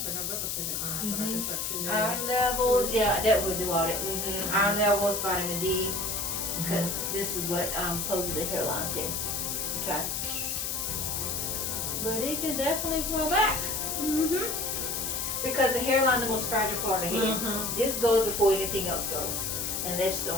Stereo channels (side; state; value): left; noise; hiss, 1 dB below the sound